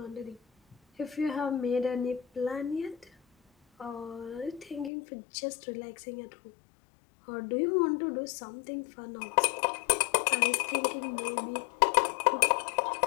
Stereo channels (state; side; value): drops out; right; at 4.9 s